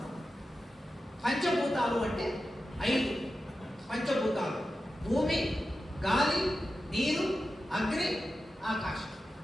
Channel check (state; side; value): normal; both; correlation 0.92